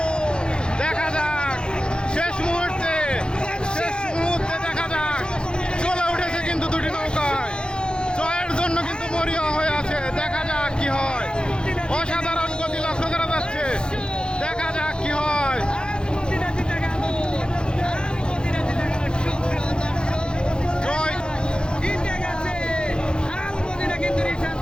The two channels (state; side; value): late; right; 0.049 ms